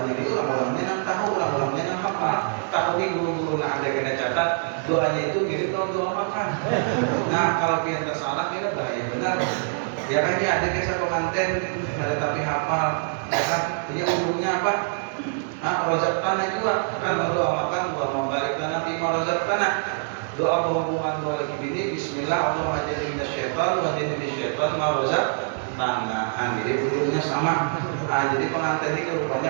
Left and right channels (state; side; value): silent; left; digital silence